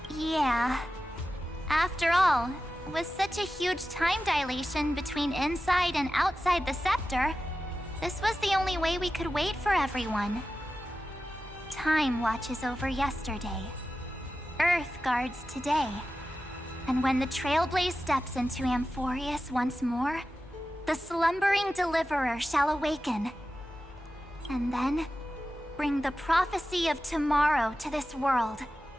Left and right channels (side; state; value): both; normal; correlation 0.93